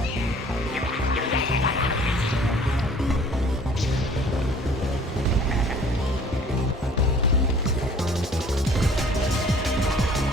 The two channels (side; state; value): both; normal; correlation 0.52